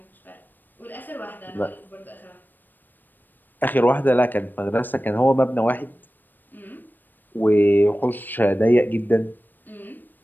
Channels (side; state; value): right; late; 0.091 ms